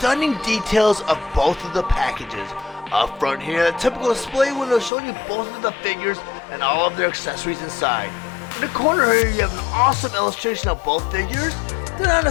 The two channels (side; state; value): right; drops out; at 4.9 s